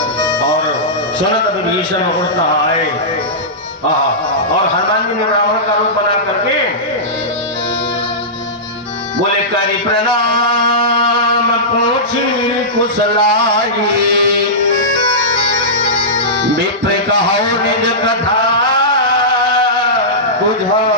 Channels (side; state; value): both; normal; correlation -0.16